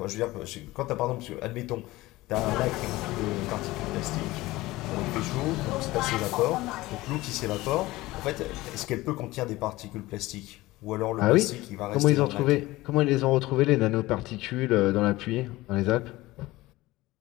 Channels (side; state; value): right; quieter; 18.9 dB